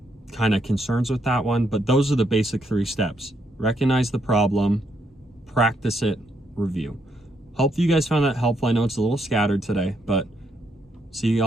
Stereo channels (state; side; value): normal; both; correlation 0.76